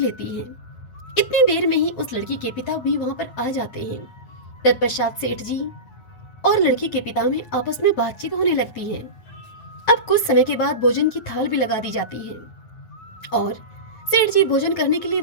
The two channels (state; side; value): late; right; 9.3 ms